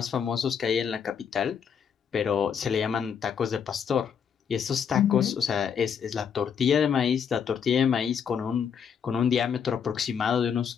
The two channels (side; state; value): right; quieter; 7.3 dB